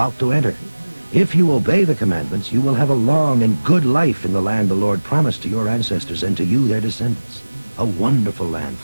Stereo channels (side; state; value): both; inverted; correlation -1.00